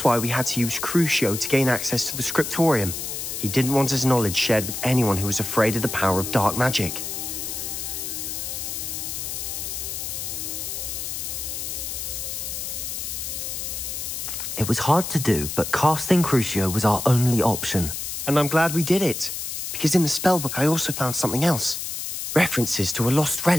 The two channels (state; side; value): noise; left; hiss, 5 dB below the sound